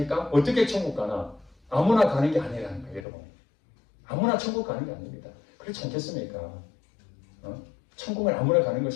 어떻게 천국 가나? 아무나 가는 게 아니라는 거예요, 여러분. 아무나 천국 가는 게 아닙니다. 그렇지 않겠습니까? 천국을 아무나 가는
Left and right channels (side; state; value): right; drops out; at 3.1 s